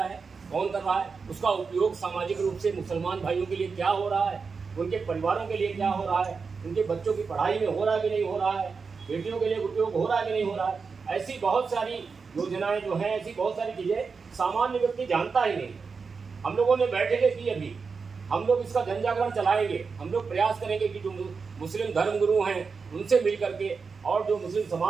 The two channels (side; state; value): left; quieter; 5.1 dB